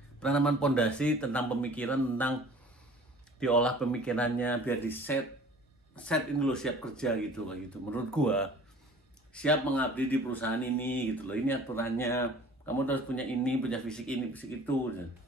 Penanaman fondasi tentang pemikiran, tentang diolah pemikirannya biar di set ini lo siap kerja gitu kayak gitu. Menurut gua siap mengabdi di perusahaan ini gitu loh. Ini aturannya. Kamu harus punya ini, punya fisik ini, fisik itu.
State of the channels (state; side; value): normal; both; correlation 0.47